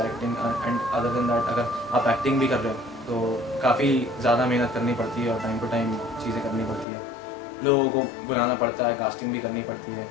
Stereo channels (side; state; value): right; drops out; at 6.9 s